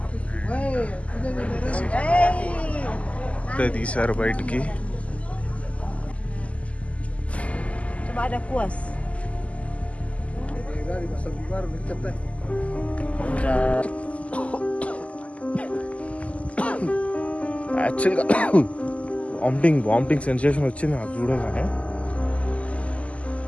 ఇప్పుడే తీశారు బయటికి. Ada kuas. యాక్చువల్గా vomiting sensation వచ్చింది నాకు చూడగానే.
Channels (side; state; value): right; late; 0.065 ms